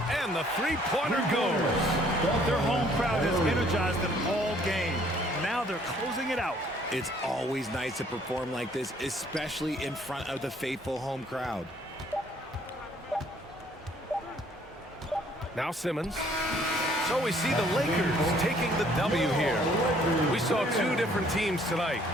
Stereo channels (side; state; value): both; normal; correlation 0.61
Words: the 3-pointer goes. Their home crowd has energized them all game. Now they're closing it out. It's always nice to perform like this, especially in front of the faithful home crowd. Now Simmons. So we see the Lakers taking the W here. We saw 2 different teams tonight.